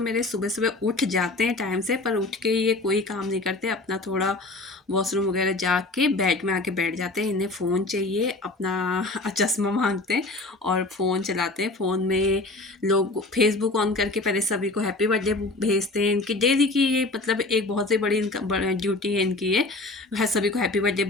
मेरे सुबह सुबह उठ जाते हैं टाइम से, पर उठ के ये कोई काम नहीं करते। अपना थोड़ा वॉशरूम वगैरह जाके बेड में आके बैठ जाते हैं। इन्हें फ़ोन चाहिए, अपना चश्मा मांगते हैं और फ़ोन चलाते हैं। फ़ोन में लोग फेसबुक ऑन करके पहले सभी को हैप्पी बर्थडे भेजते हैं। इनकी डेली की ये मतलब एक बहुत ही बड़ी इनका ड्यूटी है इनकी ये, है सभी को हैप्पी बर्थडे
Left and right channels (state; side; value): quieter; right; 3.1 dB